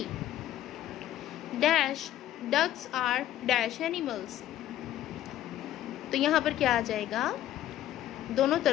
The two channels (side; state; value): right; quieter; 12.8 dB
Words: Dash, ducks are dash animals. तो यहाँ पर क्या आ जाएगा? दोनों